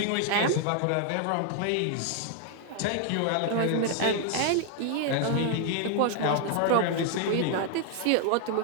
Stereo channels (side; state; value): both; different; correlation 0.00